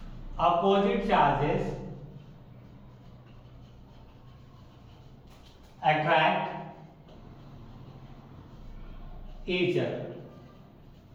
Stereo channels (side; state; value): both; identical; correlation 1.00